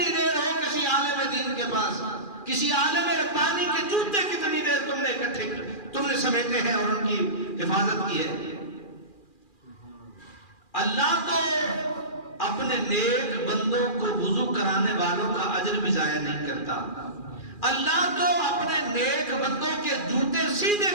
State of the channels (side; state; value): right; late; 2.4 ms